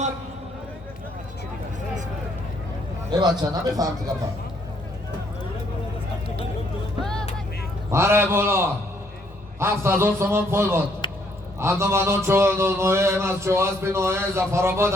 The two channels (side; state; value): both; normal; correlation 0.68